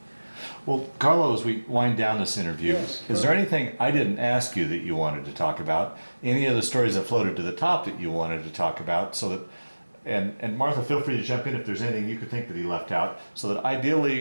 Well, Carlo, as we wind down this interview, Yes, is there anything I didn't ask you that you wanted to talk about? Any of the stories that floated to the top that you wanted to talk about, so that, and Martha, feel free to jump in if there's anything you could think that he left out, so that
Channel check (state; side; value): inverted; both; correlation -1.00